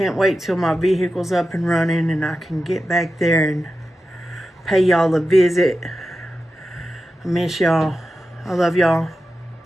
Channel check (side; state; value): both; normal; correlation 0.91